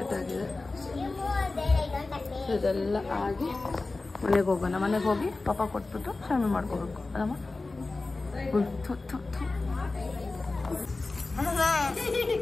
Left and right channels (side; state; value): right; quieter; 3.4 dB